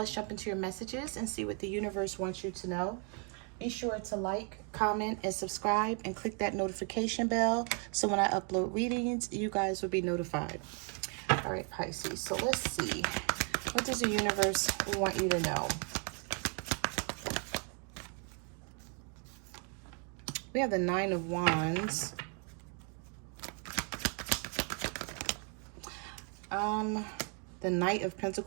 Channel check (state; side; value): quieter; left; 38.7 dB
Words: jump into your messages and see what the universe wants you to know. Be sure to like, comment, and subscribe and click that notification bell so when I upload readings, you guys will be notified. All right, Pisces, so let's see. What does the universe want you to know? We have the Nine of Wands. The Knight of